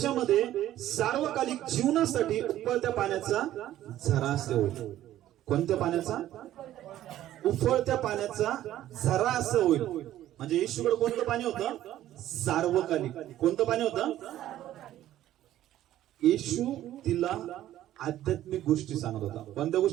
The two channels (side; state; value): left; quieter; 13.1 dB